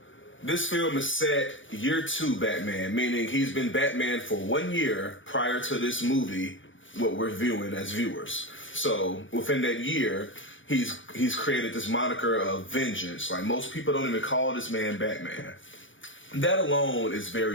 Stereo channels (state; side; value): late; right; 0.56 ms